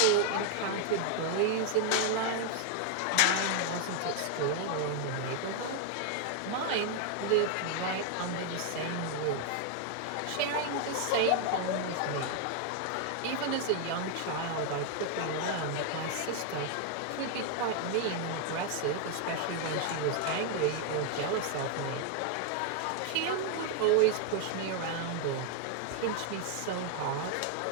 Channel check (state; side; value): different; both; correlation 0.00